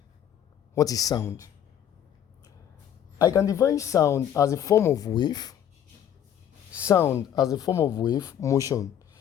What is sound? I can define sound as a form of wave, motion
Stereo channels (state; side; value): quieter; right; 9.8 dB